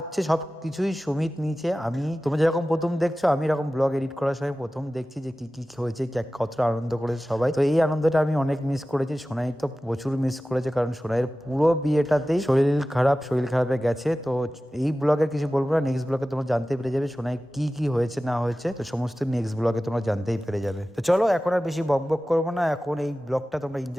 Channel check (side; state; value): both; normal; correlation 0.95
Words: সব কিছুই সুমিত নিচে। আমি তোমরা যেরকম প্রথম দেখছো, আমি এরকম ব্লগ এডিট করার সময় প্রথম দেখছি যে কি কি হয়েছে, কতটা আনন্দ করেছে সবাই। তো এই আনন্দটা আমি অনেক মিস করেছি, সোনাই তো প্রচুর মিস করেছে, কারণ সোনাইয়ের পুরো বিয়েটাতেই শরীর খারাপে গেছে। তো এই ব্লগের কিছু বলবো না, নেক্সট ব্লগে তোমরা জানতে পেরে যাবে সোনাই কি কি হয়েছে না হয়েছে, তো সমস্ত নেক্সট ব্লগে তোমরা জানতেই পেরে যাবে। তো চলো এখন আর বেশি বক করবো না, এখন এই ব্লগটা তোমরা